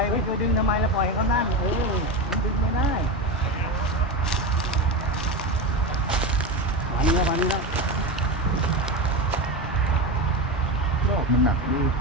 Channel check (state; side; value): normal; both; correlation 0.19